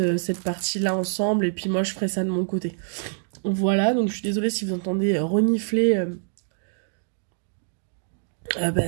cette partie là ensemble et puis moi je ferai ça de mon côté. Voilà, donc je suis désolée si vous entendez renifler.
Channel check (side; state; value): left; silent; digital silence